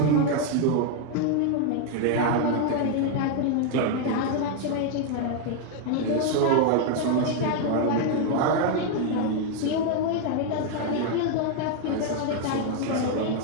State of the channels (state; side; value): different; both; correlation 0.00